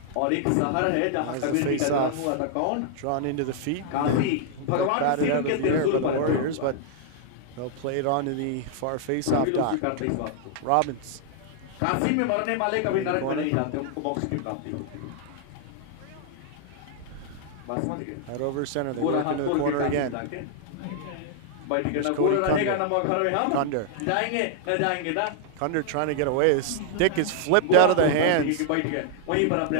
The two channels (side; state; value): both; different; correlation 0.00